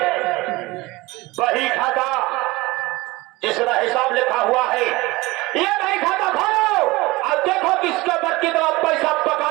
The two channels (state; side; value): quieter; left; 21.5 dB